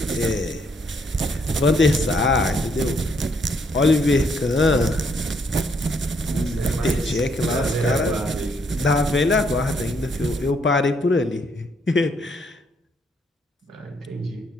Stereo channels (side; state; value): both; normal; correlation 0.71